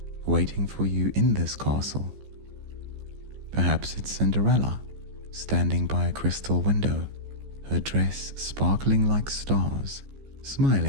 waiting for you in this castle. Perhaps it's Cinderella, standing by a crystal window, her dress sparkling like stars,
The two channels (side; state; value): left; late; 15 ms